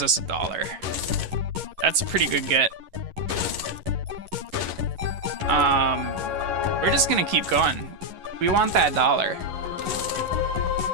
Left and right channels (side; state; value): left; late; 11 ms